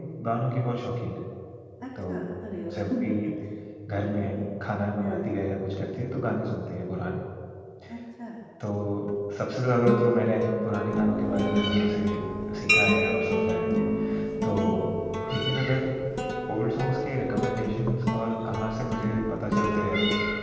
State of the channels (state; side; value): identical; both; correlation 1.00